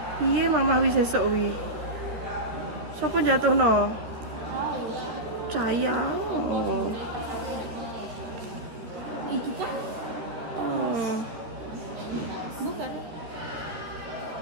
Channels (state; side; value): late; left; 13 ms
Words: Iya Mama Awis esok wi. Sopo jatuh no? Caya. Oh. Iki kan? Bukan.